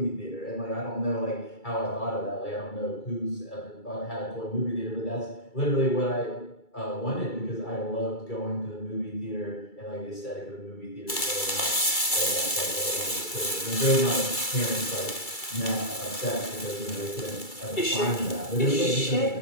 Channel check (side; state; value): right; late; 2.3 ms